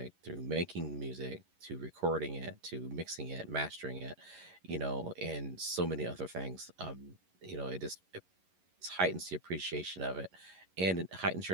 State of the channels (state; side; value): late; left; 11 ms